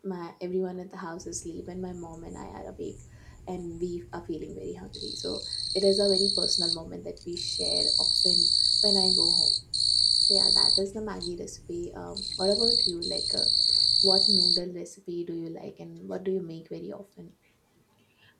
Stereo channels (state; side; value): identical; both; correlation 1.00